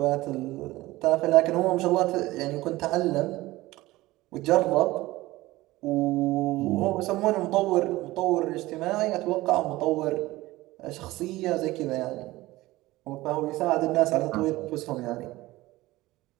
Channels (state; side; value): quieter; left; 18.5 dB